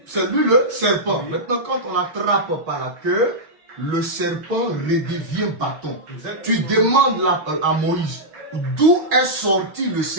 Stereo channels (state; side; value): late; left; 6.2 ms